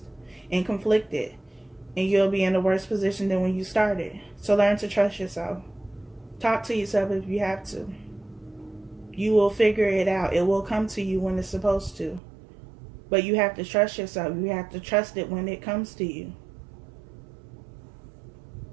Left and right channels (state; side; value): drops out; left; at 12.2 s